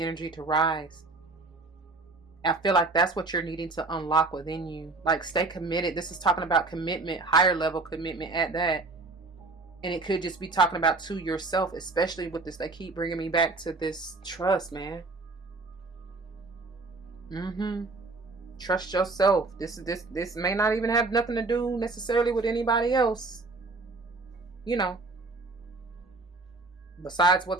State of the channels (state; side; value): quieter; left; 3.4 dB